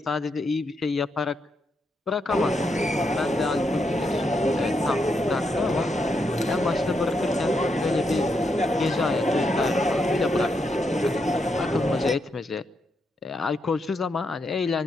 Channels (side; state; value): both; normal; correlation 0.81